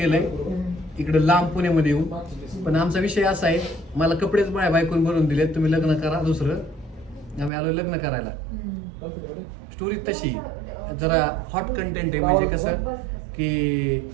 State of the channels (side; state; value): left; drops out; at 7.5 s